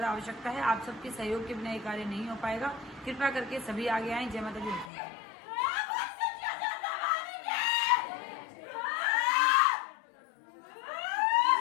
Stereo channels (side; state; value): right; drops out; at 4.9 s